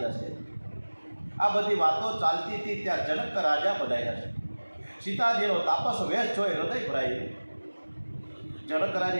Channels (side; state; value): both; inverted; correlation -1.00